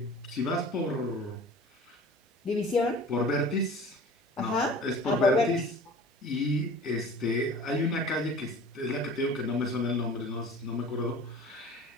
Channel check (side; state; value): both; normal; correlation 0.43